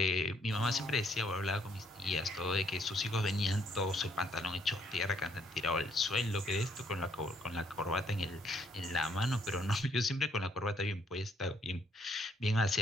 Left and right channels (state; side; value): normal; both; correlation 0.70